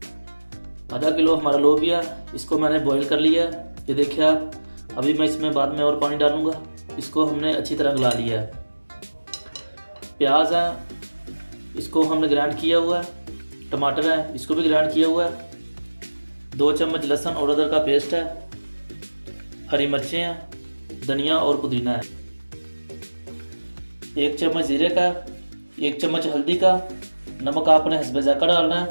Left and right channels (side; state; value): both; inverted; correlation -1.00